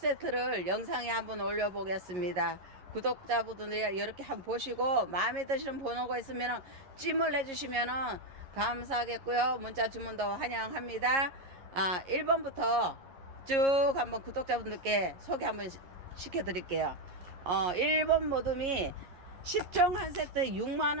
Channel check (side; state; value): left; late; 11 ms